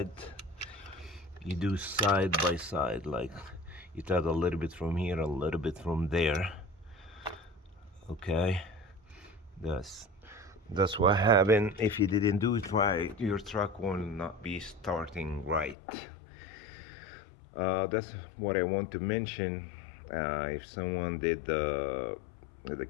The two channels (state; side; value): drops out; right; at 15.8 s